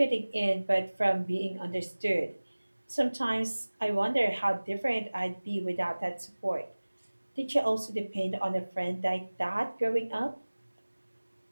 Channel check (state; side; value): inverted; both; correlation -1.00